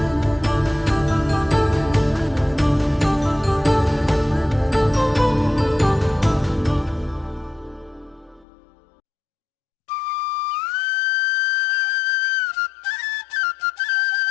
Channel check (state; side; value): drops out; right; at 8.5 s